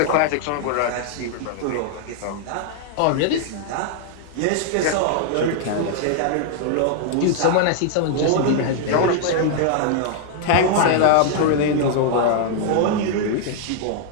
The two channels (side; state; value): both; different; correlation 0.00